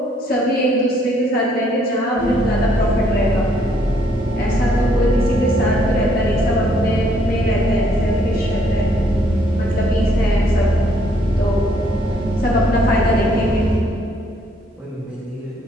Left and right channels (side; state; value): both; normal; correlation 0.68